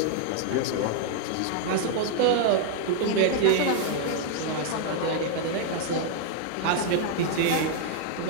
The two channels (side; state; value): both; different; correlation 0.00